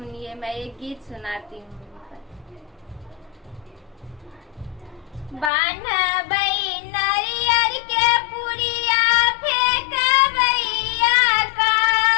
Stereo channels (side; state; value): right; drops out; at 5.5 s